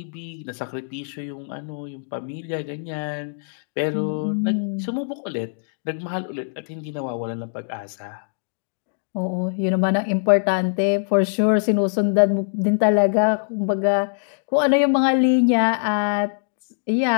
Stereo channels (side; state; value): right; silent; digital silence